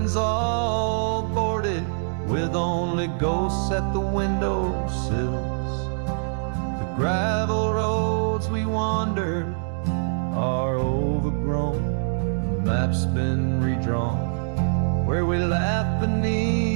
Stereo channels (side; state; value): left; silent; 62 dB below the other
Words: all boarded with only ghosts at the windowsills. The gravel roads we wandered are overgrown, the map's been redrawn, where we laugh